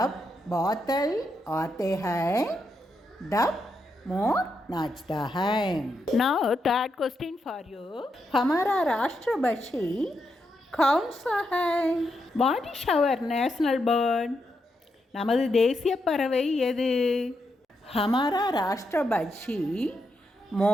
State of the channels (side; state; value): both; normal; correlation 0.83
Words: बादल आते हैं तब मोर नाचता है. Now third question for you. हमारा राष्ट्रपक्षी कौन सा है? What is our national bird? நமது தேசிய பறவை எது? हमारा राष्ट्रपक्षी